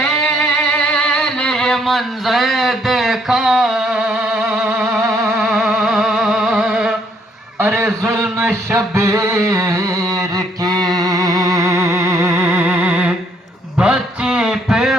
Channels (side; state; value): both; normal; correlation 0.68